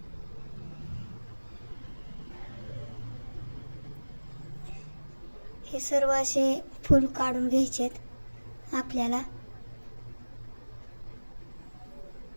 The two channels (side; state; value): both; inverted; correlation -1.00